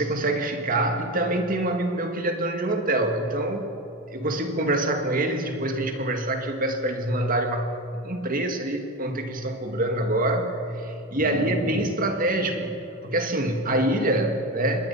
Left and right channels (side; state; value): both; normal; correlation 0.22